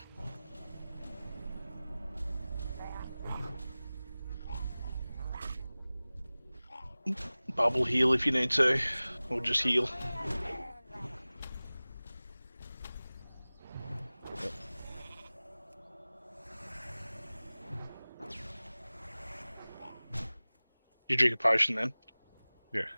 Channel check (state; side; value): inverted; both; correlation -0.98